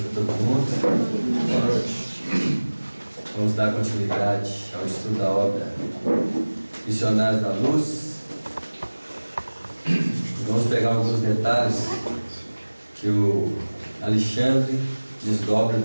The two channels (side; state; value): both; inverted; correlation -1.00